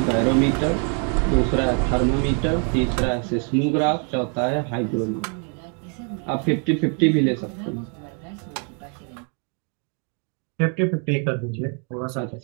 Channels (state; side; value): quieter; left; 39.9 dB